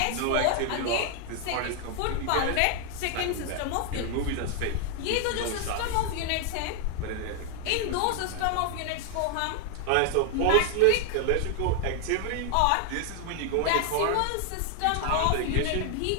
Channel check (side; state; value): both; different; correlation 0.00